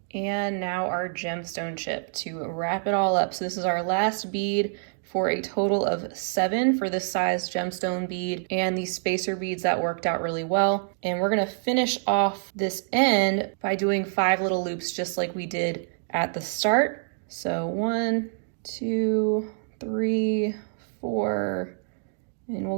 And now our gemstone chip to wrap it all up. So this is our last bead for a total of 7 for this size gemstone bead, and these spacer beads that worked out really well. And we're gonna finish off this end by doing 5 little loops just like we did at the start. So 1, 2, 3, 4, and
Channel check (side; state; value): left; silent; digital silence